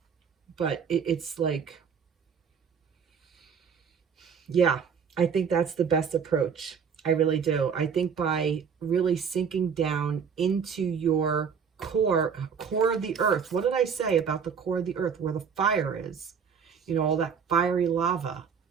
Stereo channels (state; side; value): quieter; left; 6.7 dB